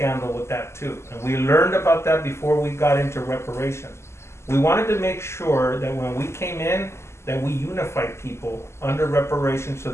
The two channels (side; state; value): right; late; 0.13 ms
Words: with that too. And we learned about that before we got into reparations. We wanted to make sure that when we came in, that we unified people under reparations so